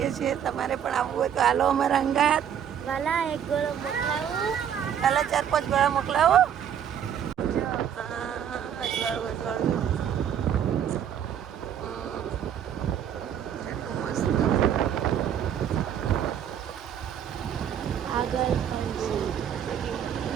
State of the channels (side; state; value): left; quieter; 9.1 dB